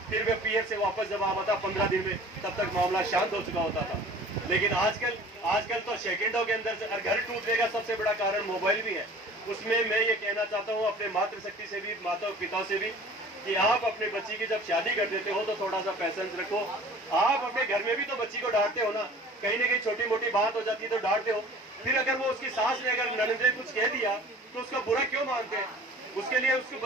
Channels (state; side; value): normal; both; correlation 0.46